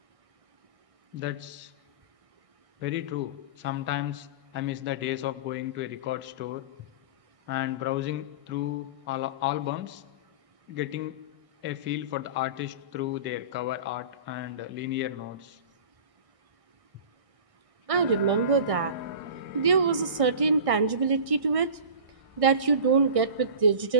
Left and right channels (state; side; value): late; left; 1.6 ms